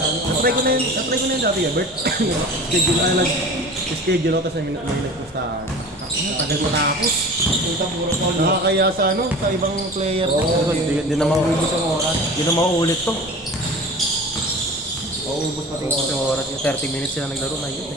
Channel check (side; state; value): both; normal; correlation 0.38